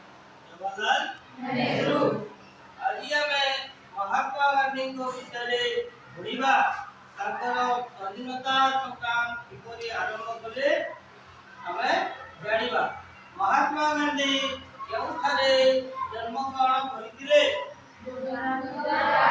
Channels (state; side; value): identical; both; correlation 1.00